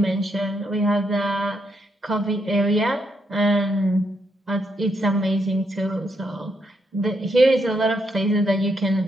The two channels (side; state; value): both; normal; correlation 0.78